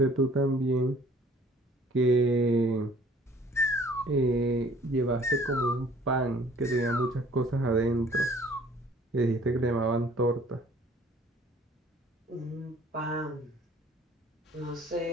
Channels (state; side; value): normal; both; correlation 0.54